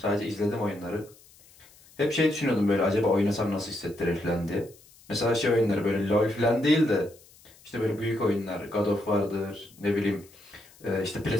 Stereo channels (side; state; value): left; noise; hiss, 26 dB below the sound